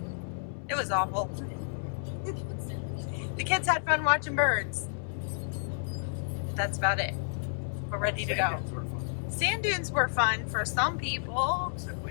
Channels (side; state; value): right; silent; 57 dB below the other